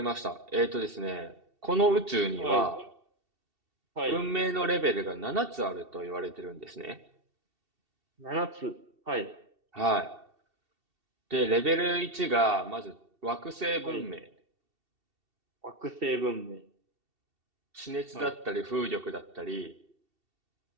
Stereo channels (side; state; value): left; late; 2.7 ms